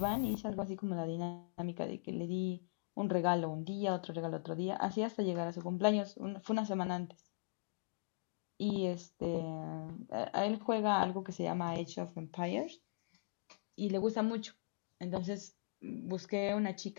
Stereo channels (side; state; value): right; quieter; 34.0 dB